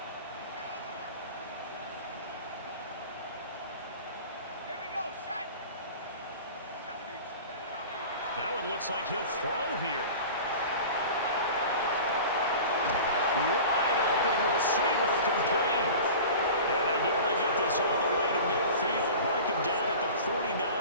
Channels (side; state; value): both; inverted; correlation -0.37